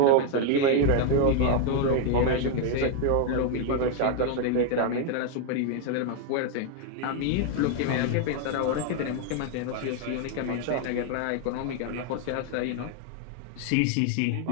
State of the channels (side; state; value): both; different; correlation 0.00